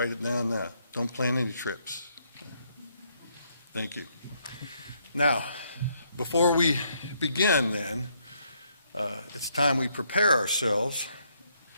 it down now. Don't plan any trips. Thank you. Now, before we begin then, it's time we prepare ourselves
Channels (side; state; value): both; inverted; correlation -0.73